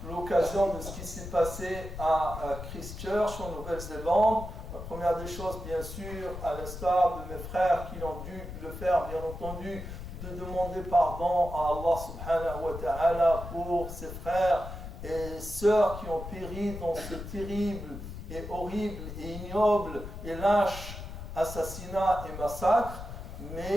l'occasion de ce qui s'est passé à Christchurch en Nouvelle-Zélande. La première des choses, bien sûr, à l'instar de mes frères qui ont dû le faire, bien entendu, de demander pardon à Allah subhanahu wa ta'ala pour ses frères et sœurs qui ont péri dans ce terrible et horrible et ignoble et lâche assassinat et massacre,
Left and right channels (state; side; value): noise; left; rumble, 9 dB below the sound